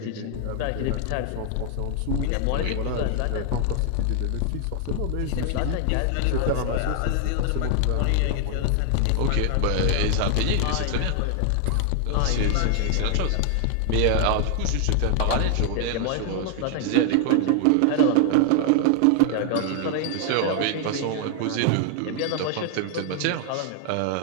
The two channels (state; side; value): different; both; correlation 0.00